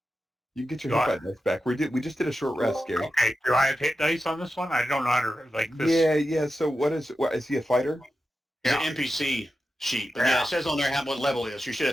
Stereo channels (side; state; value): both; normal; correlation 0.91